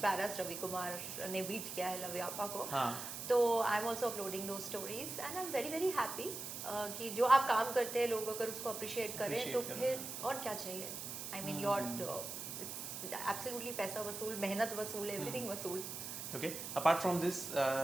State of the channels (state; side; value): noise; right; hiss, 7 dB below the sound